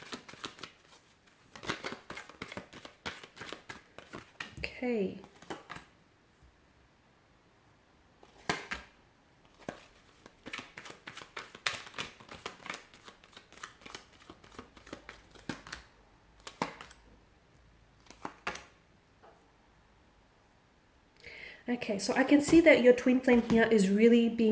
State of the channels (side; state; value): both; identical; correlation 1.00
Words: Okay. Okay, so I can see that your twin flame here is really